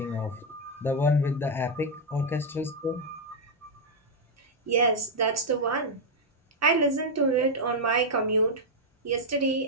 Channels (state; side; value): normal; both; correlation -0.01